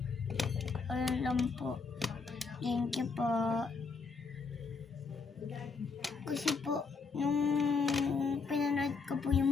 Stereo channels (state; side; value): quieter; right; 4.7 dB